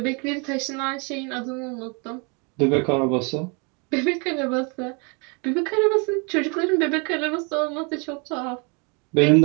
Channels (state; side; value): quieter; left; 33.3 dB